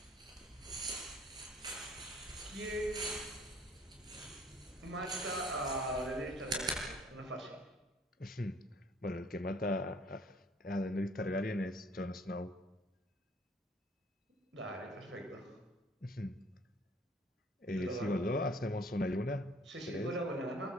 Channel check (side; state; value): both; normal; correlation 0.56